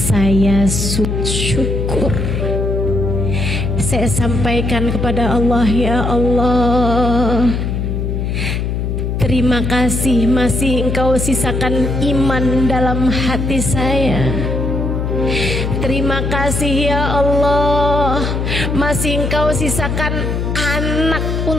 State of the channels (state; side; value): noise; left; hum, 1 dB below the sound